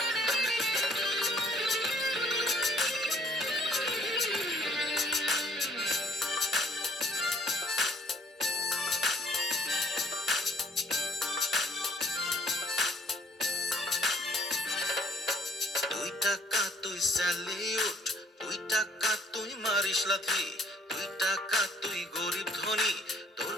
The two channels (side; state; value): both; normal; correlation 0.61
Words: টাকা তুই স্যালিউট, 2 টাকা তুই মারিস লাথি, 2 টাকা তুই গরিব ধনী, তোর